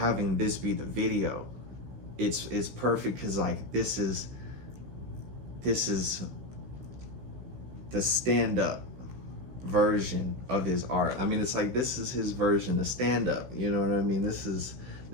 this be the video, it's perfect because like this is the stand-up version of his art. I mean, it's like this is his version of stand-up, you know what I mean? This is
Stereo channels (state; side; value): late; left; 16 ms